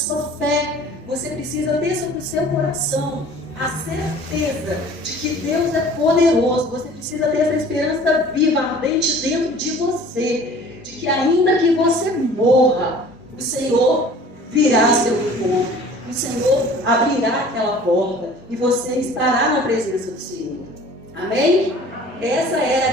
fé. Você precisa ter sobre o seu coração a certeza de que Deus é poderoso. Você precisa ter essa esperança viva, ardente dentro de você, de que ainda que você morra, o Senhor virá ao seu encontro, o Senhor abrirá aquela porta e você estará na presença do Senhor. Amém? Essa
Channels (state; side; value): normal; both; correlation 0.47